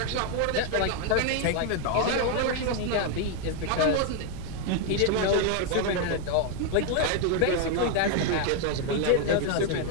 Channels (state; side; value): different; both; correlation 0.01